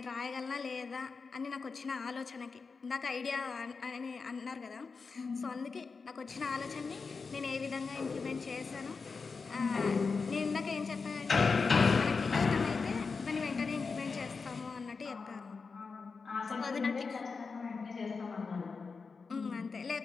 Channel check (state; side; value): quieter; right; 4.8 dB